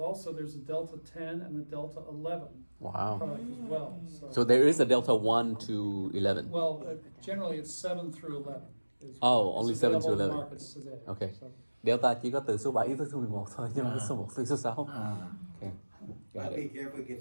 there's a Delta 10 and a Delta 11 Wow. product as well. So there is a Delta 1 to 11. Well, generally it's 7 through 11. Only 7 to available in 11. markets today. Okay. So, Delta chỉ có từ số 7 tới số 11 thôi, nhưng mà số 1 tới số 6. Okay. Got But be it. careful,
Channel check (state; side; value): inverted; both; correlation -1.00